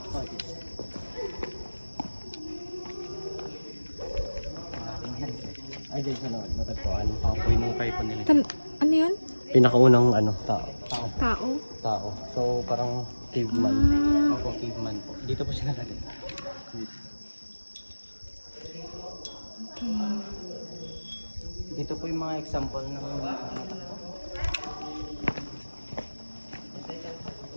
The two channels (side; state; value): both; inverted; correlation -1.00